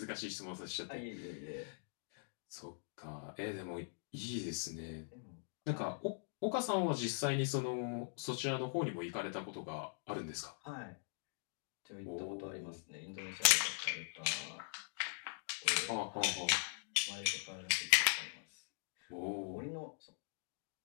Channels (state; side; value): silent; right; digital silence